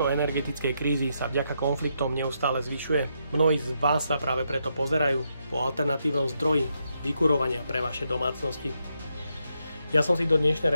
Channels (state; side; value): inverted; both; correlation -0.80